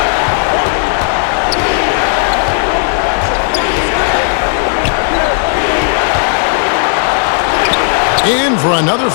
In for another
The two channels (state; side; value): silent; right; 57 dB below the other